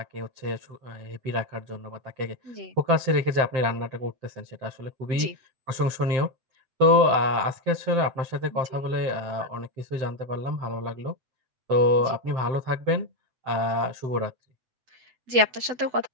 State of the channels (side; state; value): left; late; 8.0 ms